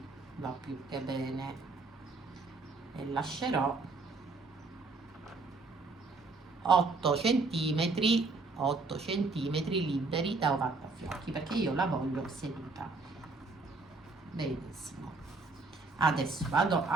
va più che bene e lascerò 8 centimetri liberi da ovattafiocchi perché io la voglio seduta. Benissimo. Adesso vado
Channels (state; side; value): quieter; left; 3.7 dB